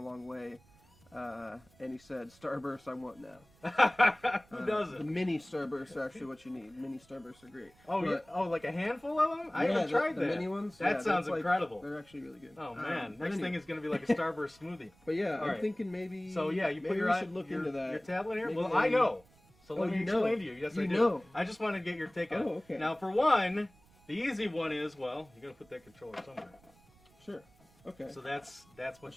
long way. And he said, Starburst I want now. Who doesn't? The mini Starbursts are actually what you need. Mini Starbursts are great. Oh, But, yeah. Oh, like a handful of them? I haven't tried the that. mini ones. That yeah, sounds that's incredible. They're actually really good. Oh, man. But Next anyway. thing is going to be like a Starburst smoothie. But yeah, All I'm right. thinking maybe. So, yeah, you put maybe your we should look into that. Your tablet here? Maybe Well, I know. So Oh, let me you explain know. to you. Yes, You I do. know. I just want to get your take on it. Oh, okay. Now, for one, the easy one is, well, you got to put that controller somewhere. Sure. Okay. So that's what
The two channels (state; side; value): noise; right; rumble, 29 dB below the sound